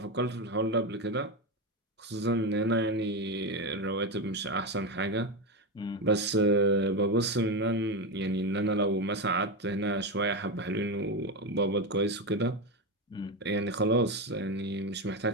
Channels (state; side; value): normal; both; correlation 0.13